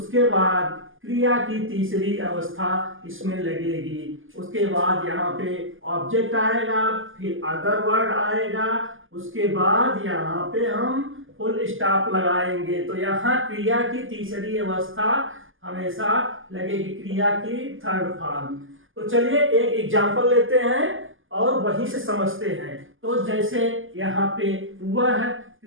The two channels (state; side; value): late; left; 0.58 ms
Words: बाद क्रिया की तीसरी अवस्था इसमें लगेगी, उसके बाद यहाँ पे ऑब्जेक्ट आएगा, फिर अदर वर्ड आएगा, उसके बाद यहाँ पे हम फुल स्टॉप लगाएंगे। तो यहाँ क्रिया की तीसरी अवस्था हमेशा लगेगी, क्रिया की थर्ड फॉर्म। तो चलिए एक एग्जांपल लेते हैं और वहीं से समझते हैं। तो जैसे यहाँ पे वह